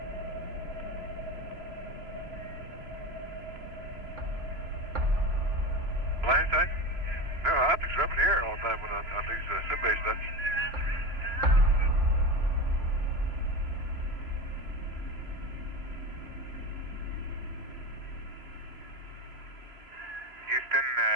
Landing side? No, optics are up in the air all the time on these sim-based stuff. Houston,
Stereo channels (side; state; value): left; late; 3.0 ms